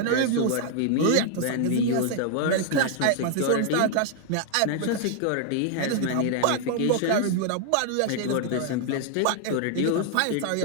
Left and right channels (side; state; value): both; different; correlation 0.00